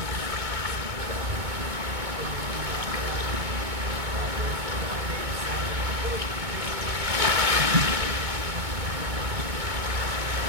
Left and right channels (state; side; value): late; left; 2.2 ms